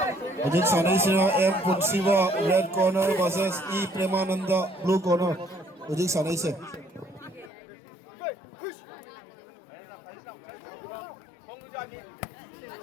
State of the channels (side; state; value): right; drops out; at 7.5 s